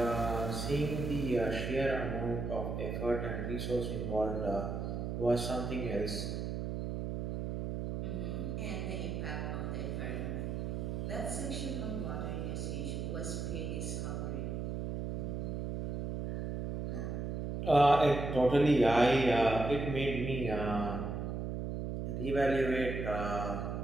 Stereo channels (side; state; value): right; noise; hum, 3 dB below the sound